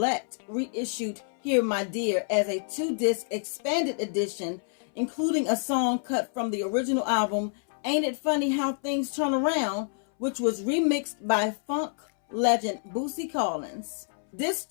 reissued Here My Dear as a 2-disc expanded edition, including a song cut from the original album, Ain't It Funny How Things Turn Around, which was remixed by funk legend Bootsy Collins. This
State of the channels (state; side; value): silent; right; 60 dB below the other